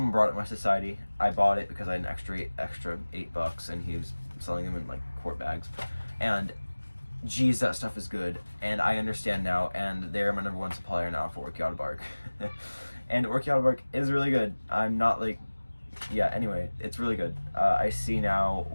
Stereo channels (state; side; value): inverted; both; correlation -1.00